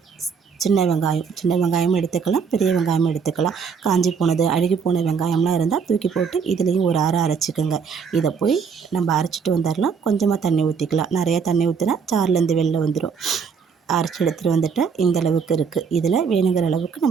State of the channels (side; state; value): left; quieter; 6.1 dB